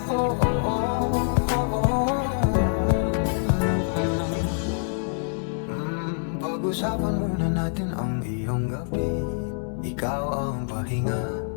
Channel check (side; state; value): right; silent; digital silence